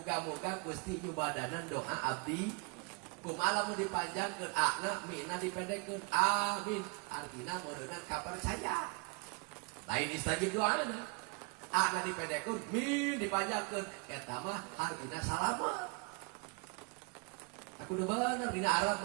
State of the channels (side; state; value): left; quieter; 31.9 dB